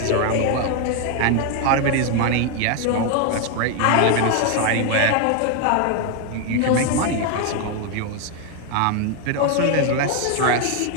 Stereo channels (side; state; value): both; different; correlation 0.01